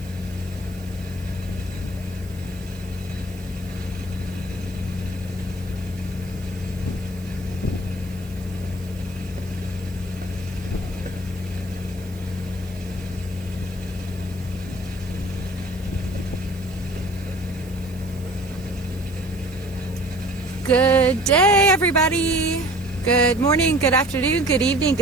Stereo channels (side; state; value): right; noise; hiss, 23 dB below the sound